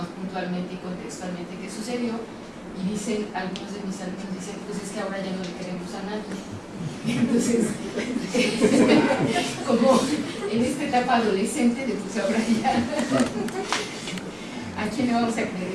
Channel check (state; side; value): identical; both; correlation 1.00